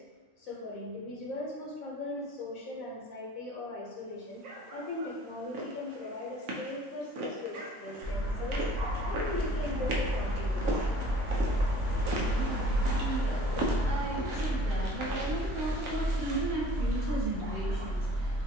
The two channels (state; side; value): normal; both; correlation 0.52